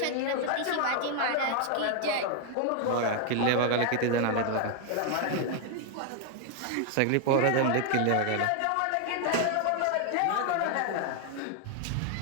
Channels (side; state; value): both; different; correlation 0.00